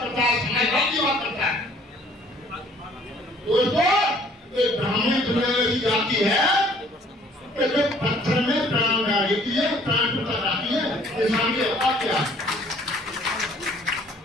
करता है समाजवाद की बात करता है दोस्तों ये ब्राह्मण दुनिया की जाति है कि जो पत्थर में प्राण डाल देती है प्राण टूटा जाती है इंसान की औकात क्या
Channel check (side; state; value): both; normal; correlation 0.58